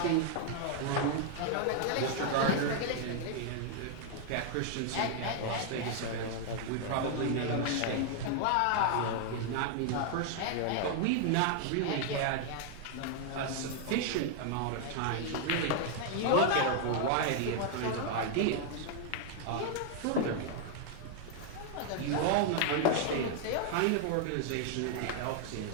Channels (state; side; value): different; both; correlation 0.00